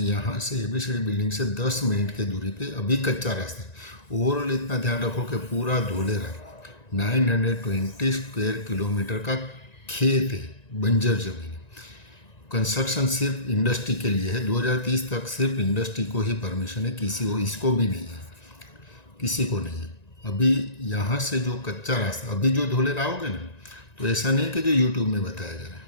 से ABCD बिल्डिंग से 10 मिनट की दूरी पे अभी कच्चा रास्ता है। ओवरऑल इतना ध्यान रखो कि पूरा धुलेरा 920 स्क्वायर किलोमीटर का खेत है, बंजर जमीन है। कंस्ट्रक्शन सिर्फ इंडस्ट्री के लिए है, 2030 तक सिर्फ इंडस्ट्री को ही परमिशन है, किसी को इसको भी नहीं है, किसी को नहीं है। अभी यहाँ से जो कच्चा रास्ता, अभी जो धुलेरा आओगे ना, तो ऐसा नहीं कि जो यूट्यूब में बताया जा रहा है,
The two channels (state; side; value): late; right; 1.9 ms